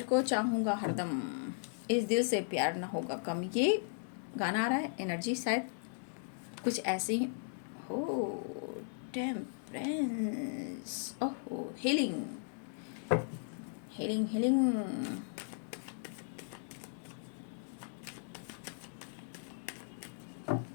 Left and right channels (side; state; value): right; silent; digital silence